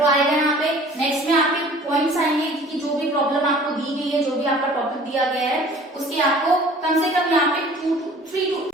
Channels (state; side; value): normal; both; correlation 0.48